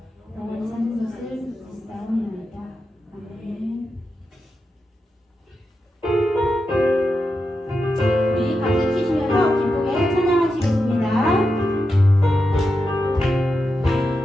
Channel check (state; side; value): normal; both; correlation 0.88